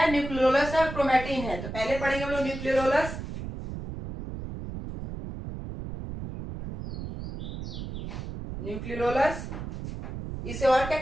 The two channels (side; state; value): right; noise; rumble, 8 dB below the sound